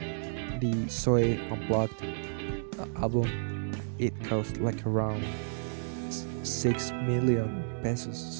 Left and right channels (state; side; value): silent; left; digital silence